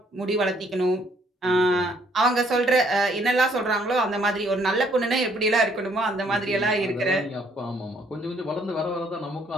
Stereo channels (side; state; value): both; normal; correlation 0.66